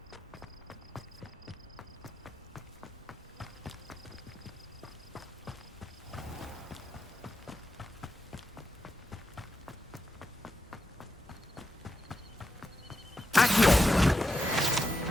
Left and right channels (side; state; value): both; normal; correlation 0.86